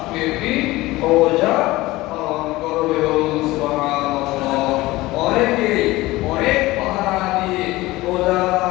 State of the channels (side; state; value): right; quieter; 19.2 dB